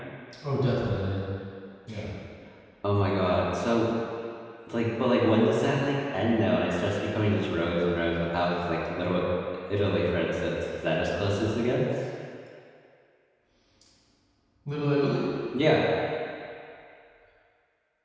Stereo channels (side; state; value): both; identical; correlation 1.00